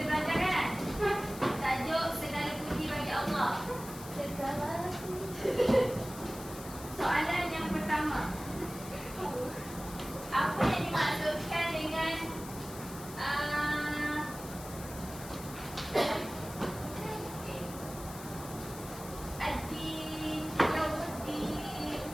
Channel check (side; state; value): left; noise; hiss, 14 dB below the sound